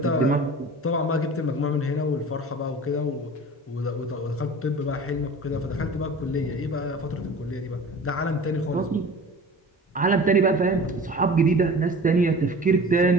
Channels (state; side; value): normal; both; correlation 0.40